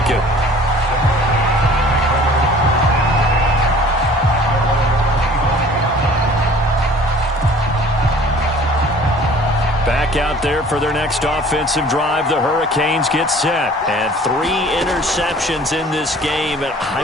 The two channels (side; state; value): both; normal; correlation 0.50